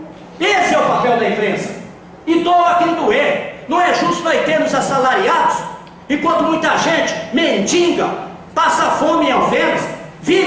Esse é o papel da imprensa. E doa quem doer. Não é justo nós termos assalariados, enquanto muita gente mendiga, passa fome em Alfenas,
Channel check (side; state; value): both; identical; correlation 1.00